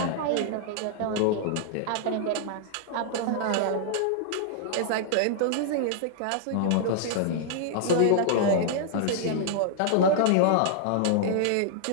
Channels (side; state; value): both; different; correlation -0.01